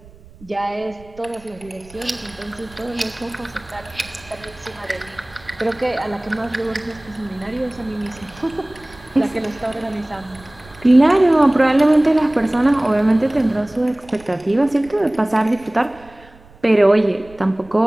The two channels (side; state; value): right; noise; rumble, 24 dB below the sound